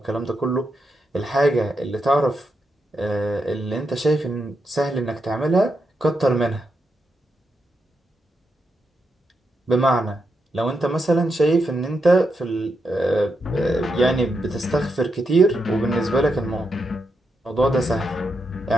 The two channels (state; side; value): normal; both; correlation 0.84